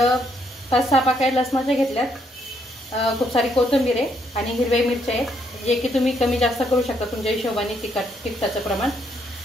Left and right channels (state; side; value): normal; both; correlation 0.73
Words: 5-6 पाकळ्या लसणाच्या घेतल्यात, खूप सारी कोथिंबीर आहे आणि हिरव्या मिरच्या आहेत, जे की तुम्ही कमी जास्त करू शकता तुमच्या हिशोबाने तिखटाचं प्रमाण।